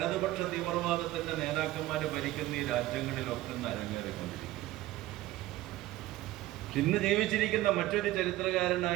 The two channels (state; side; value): quieter; left; 16.3 dB